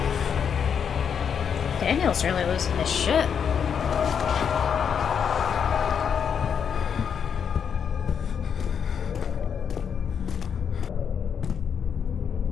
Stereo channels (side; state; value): right; quieter; 7.3 dB